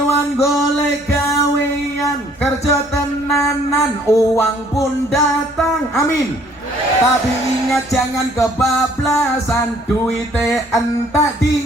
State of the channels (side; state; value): both; normal; correlation 0.60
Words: golek gawean, kerja tenanan, uang pun datang, amin. Tapi ingat jangan kebablasan, duite entak